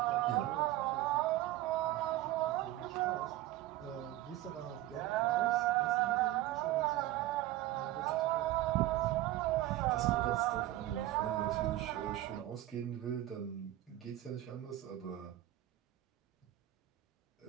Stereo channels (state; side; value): quieter; left; 15.3 dB